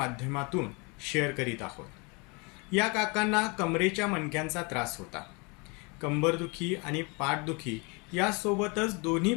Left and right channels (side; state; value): right; quieter; 30.1 dB